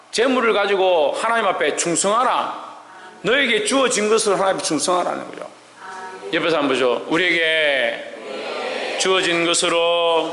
재물을 가지고 하나님 앞에 충성하라. 너에게 주어진 것을 하나님 앞에 충성하라는 거죠. 옆에서 한번 보죠. 우리에게 주어진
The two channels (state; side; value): identical; both; correlation 1.00